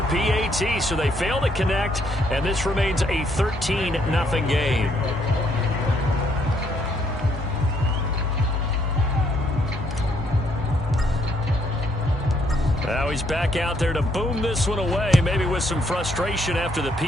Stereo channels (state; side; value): normal; both; correlation 0.70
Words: PAT, so they fail to connect. And this remains a 13-0 game. That Now he's back out there to boom this one away, maybe with some frustration after the